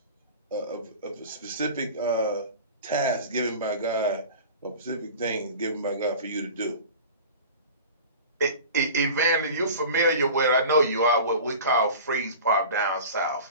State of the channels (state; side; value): inverted; both; correlation -0.37